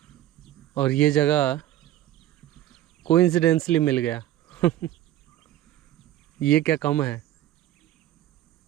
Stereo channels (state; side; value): quieter; left; 13.3 dB